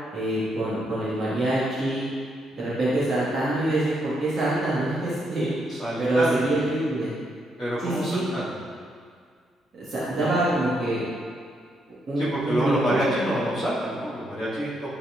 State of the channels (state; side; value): normal; both; correlation 0.77